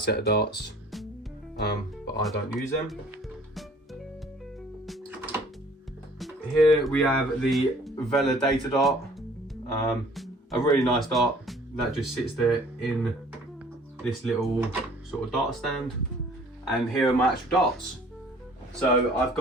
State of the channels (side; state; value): both; normal; correlation 0.54